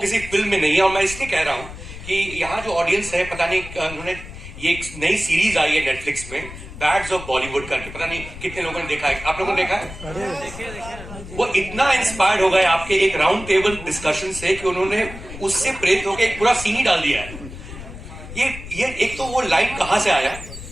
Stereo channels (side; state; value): left; noise; rumble, 13 dB below the sound